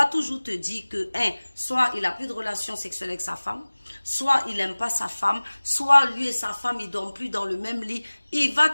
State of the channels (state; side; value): inverted; both; correlation -1.00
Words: toujours te dire que, soit il n'a plus de relation sexuelle avec sa femme, soit il n'aime pas sa femme, soit lui et sa femme, ils ne dorment plus dans le même lit. Il va